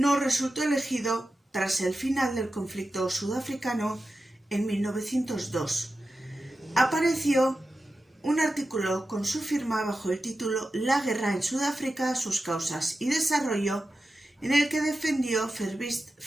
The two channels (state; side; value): normal; both; correlation 0.92